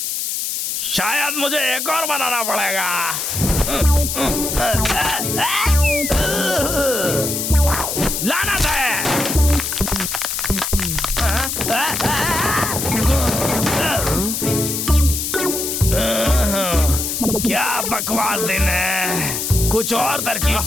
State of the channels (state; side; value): noise; left; hiss, 2 dB below the sound